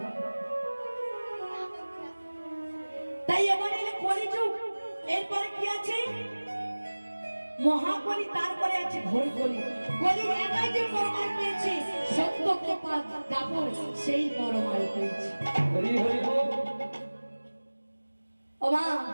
তাই এবারে এলে কলিযুগ। এরপরে কি আছে? মহাকলি, তারপরে আছে ঘোর কলি। কলি একাই যে পরমায়ু পেয়েছে, সত্য কৃপা দাপর সেই পরমায়ু পেয়েছে। হরি হরি বল। ও মা,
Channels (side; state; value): both; inverted; correlation -1.00